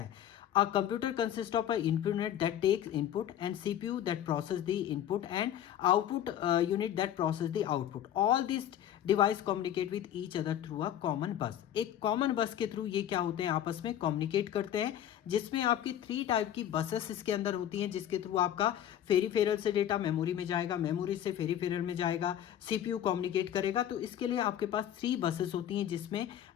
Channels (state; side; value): quieter; right; 10.9 dB